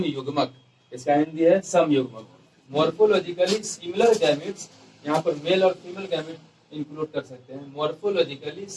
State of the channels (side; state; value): both; identical; correlation 1.00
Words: इसका हिंदी है समयुग्मक। मॉर्फोलॉजिकली सिमिलर गैमेट्स, यहाँ पर मेल और फीमेल गैमेट इंक्लूड कर सकते हैं। Morphologically